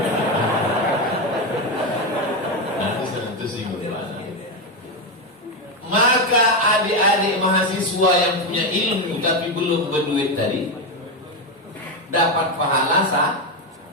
Nanti sentuh singgung mana. Maka adik-adik mahasiswa yang punya ilmu tapi belum berduit tadi dapat pahala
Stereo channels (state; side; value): normal; both; correlation 0.10